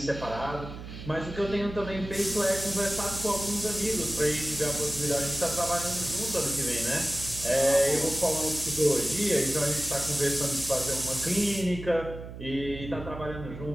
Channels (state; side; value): noise; right; hum, 11 dB below the sound